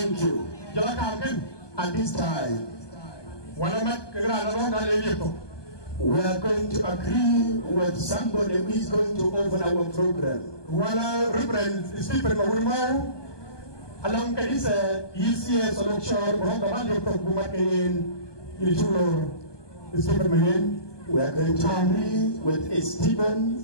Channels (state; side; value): late; right; 1.2 ms